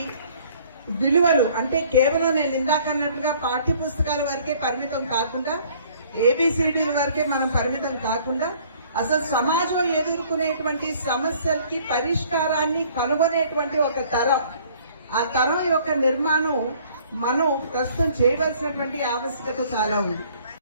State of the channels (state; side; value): inverted; both; correlation -0.57